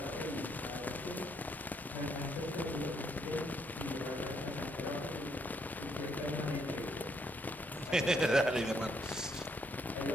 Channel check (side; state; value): both; normal; correlation 0.73